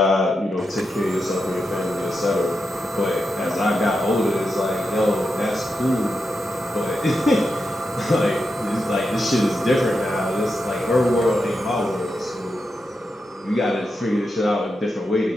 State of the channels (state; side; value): normal; both; correlation 0.87